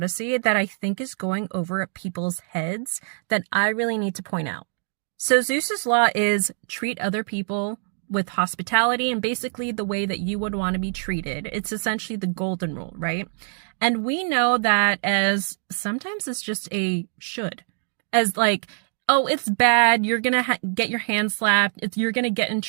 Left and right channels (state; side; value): silent; left; 62 dB below the other